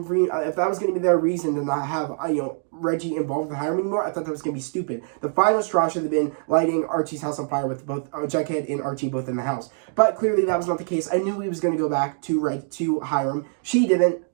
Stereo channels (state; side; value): silent; left; 63 dB below the other